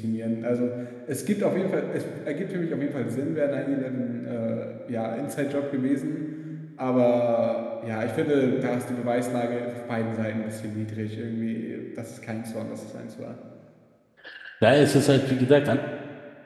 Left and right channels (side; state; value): both; identical; correlation 1.00